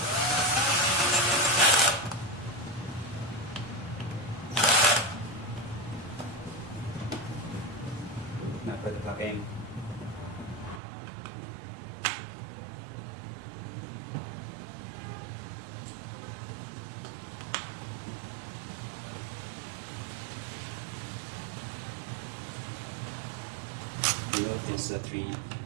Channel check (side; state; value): left; drops out; at 10.8 s